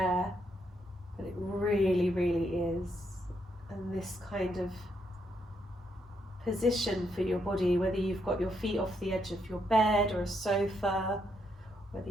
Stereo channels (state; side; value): normal; both; correlation 0.77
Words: but it really, really is. And this kind of position for your body, whether you've got your feet off the edge of your bed or a sofa, whether